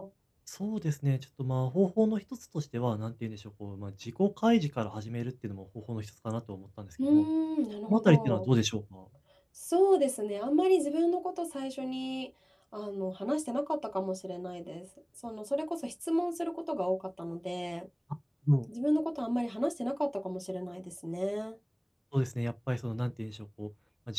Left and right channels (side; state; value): both; identical; correlation 1.00